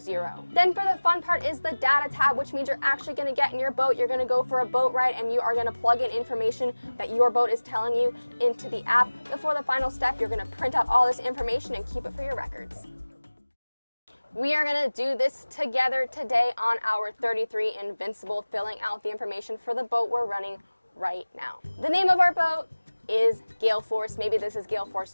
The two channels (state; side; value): inverted; both; correlation -1.00